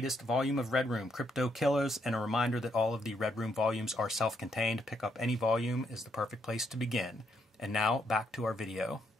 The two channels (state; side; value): normal; both; correlation 0.76